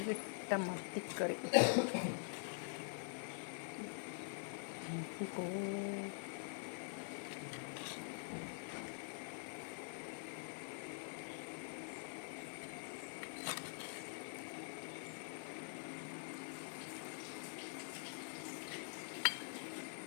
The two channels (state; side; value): silent; right; digital silence